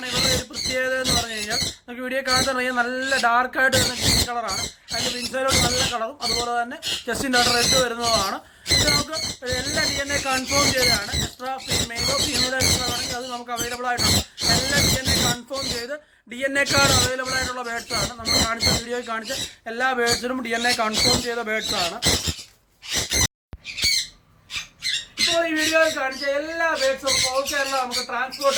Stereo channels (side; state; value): both; identical; correlation 1.00